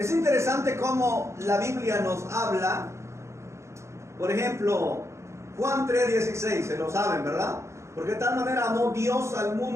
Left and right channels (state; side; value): late; left; 0.14 ms